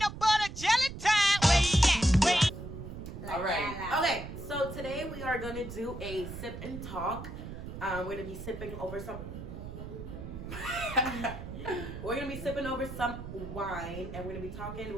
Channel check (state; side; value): noise; right; rumble, 9 dB below the sound